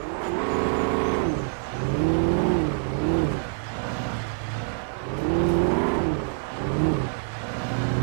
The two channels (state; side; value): silent; left; 60 dB below the other